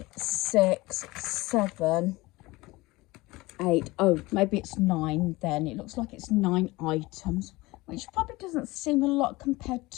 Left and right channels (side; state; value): right; quieter; 21.0 dB